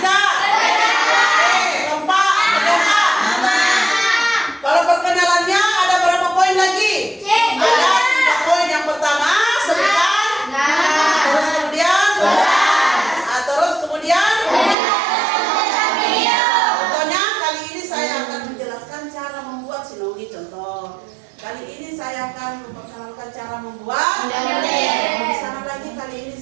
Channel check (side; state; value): left; drops out; at 14.8 s